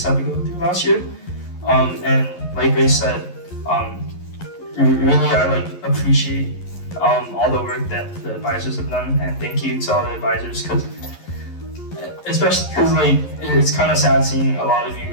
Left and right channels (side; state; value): right; late; 11 ms